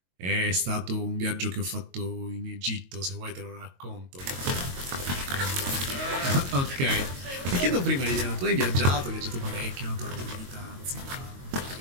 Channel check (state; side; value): late; left; 22 ms